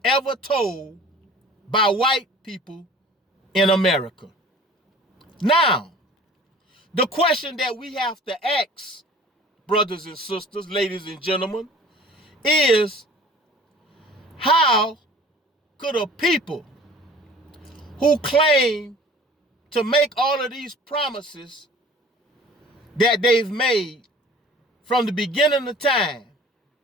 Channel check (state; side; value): normal; both; correlation 0.47